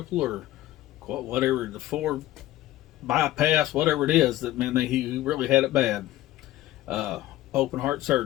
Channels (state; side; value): quieter; right; 15.1 dB